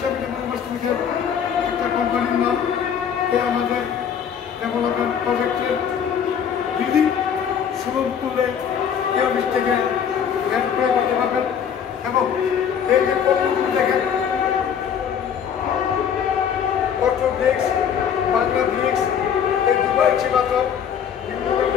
ডেভেলপার্স একটা কোম্পানির নাম। আমাদের ডেভেলপমেন্ট প্রজেক্টের বিল্ডিং সুলভ মূল্যে এই অফিস থেকে হেল্প করে করতে পারবেন। এবং এই যে পণ্যগুলো দেখেন, অটো ব্রিক্স, বাংলা ব্রিক্স, এই দুবাই চিবাতর, বিভিন্ন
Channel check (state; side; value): quieter; right; 8.0 dB